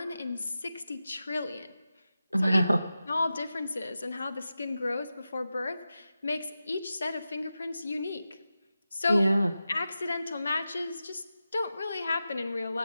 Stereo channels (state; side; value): inverted; both; correlation -0.92